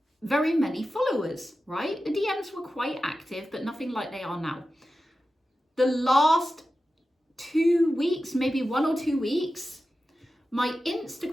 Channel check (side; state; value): both; normal; correlation 0.93